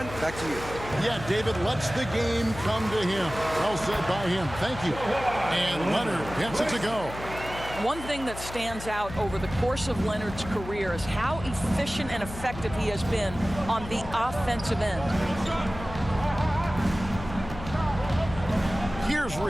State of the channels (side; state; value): left; noise; hum, 12 dB below the sound